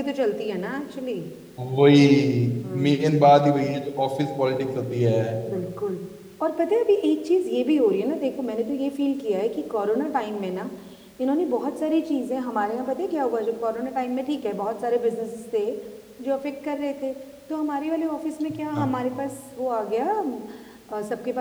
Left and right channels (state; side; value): identical; both; correlation 1.00